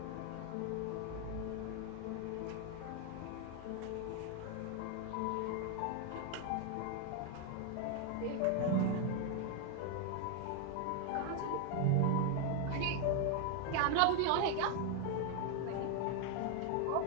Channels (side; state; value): both; different; correlation 0.01